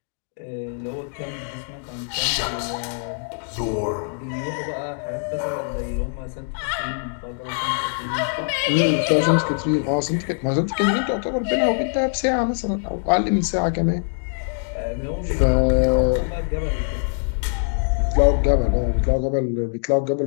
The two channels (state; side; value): silent; right; digital silence